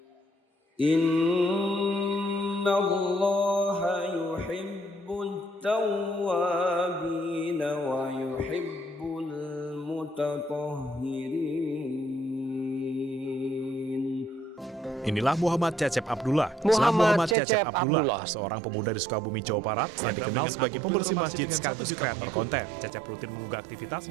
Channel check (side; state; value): left; drops out; at 17.4 s